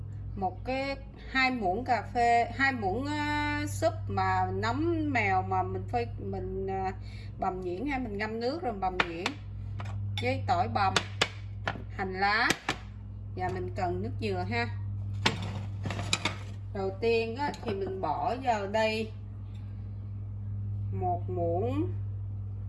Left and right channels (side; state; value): both; identical; correlation 1.00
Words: một cái 2 muỗng cà phê, 2 muỗng súp mà nấm mèo mà mình bằm nhuyễn ha, mình ngâm nước rồi bằm nhuyễn. Với tỏi bằm, hành lá. Và mình cần nước dừa ha. Đầu tiên á, thì mình bỏ vào đây 1